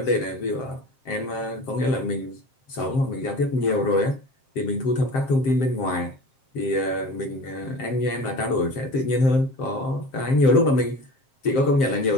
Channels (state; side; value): late; right; 7.6 ms